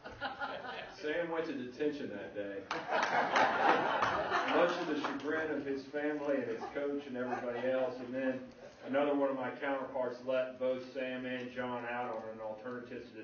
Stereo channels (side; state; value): both; identical; correlation 1.00